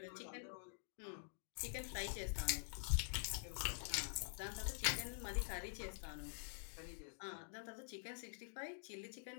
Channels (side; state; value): right; silent; digital silence